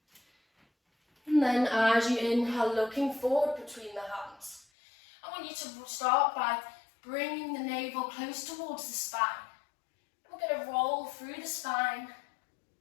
And then as you inhale, looking forward between the hands. I want you to start by bringing the navel close towards the spine. We're going to roll through the spine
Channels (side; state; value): right; drops out; at 4.7 s